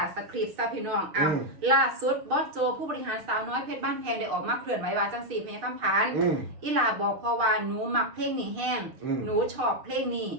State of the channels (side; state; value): left; late; 6.6 ms